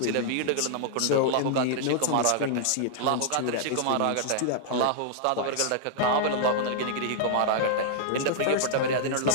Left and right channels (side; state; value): both; different; correlation -0.01